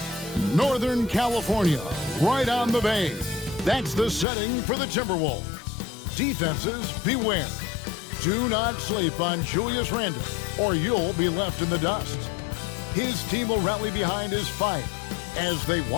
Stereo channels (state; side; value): drops out; right; at 4.2 s